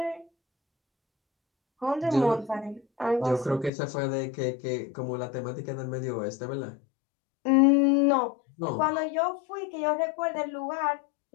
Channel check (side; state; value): right; drops out; at 3.7 s